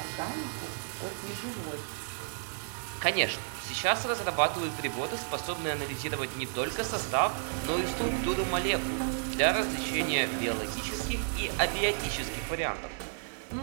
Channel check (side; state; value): left; silent; digital silence